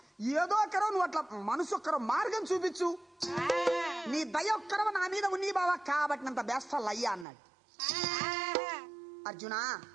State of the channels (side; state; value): left; drops out; at 7.2 s